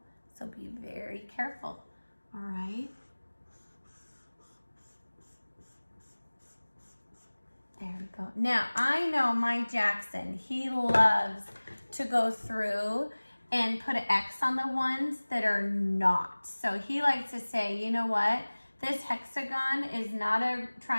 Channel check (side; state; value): both; inverted; correlation -1.00